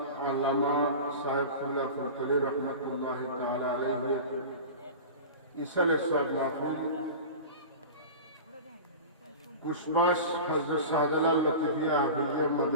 अल्लामा साहिब खुल्ला फरकली रहमतुल्लाहि तआला अलैहि इसल सब महफिल कुशबाश हजरत शाहजालाल लतीफिया हाफिजिया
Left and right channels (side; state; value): both; inverted; correlation -0.31